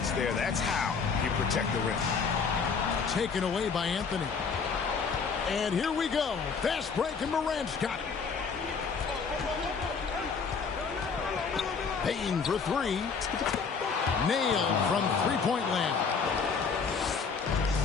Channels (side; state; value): right; quieter; 5.5 dB